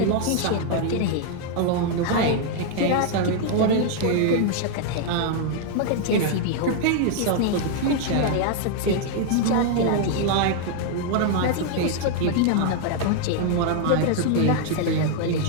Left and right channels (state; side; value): different; both; correlation 0.00